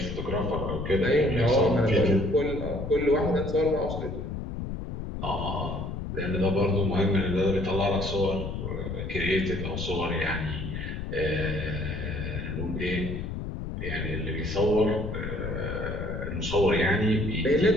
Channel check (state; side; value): noise; left; rumble, 5 dB below the sound